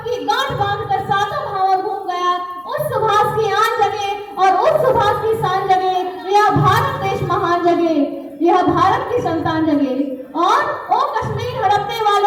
की गांठ बांधकर सातों भावर घूम गया, उस सुभाष की आन जगे और उस सुभाष की शान जगे, यह भारत देश महान जगे, यह भारत की संतान जगे। और ओ कश्मीर हड़पने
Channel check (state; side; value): identical; both; correlation 1.00